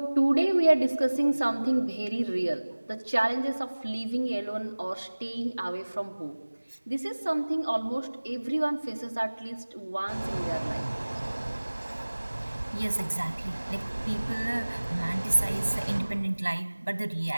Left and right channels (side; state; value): both; inverted; correlation -1.00